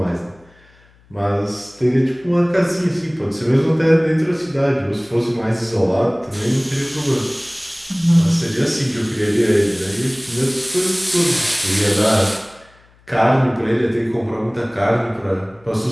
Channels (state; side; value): noise; left; hum, 30 dB below the sound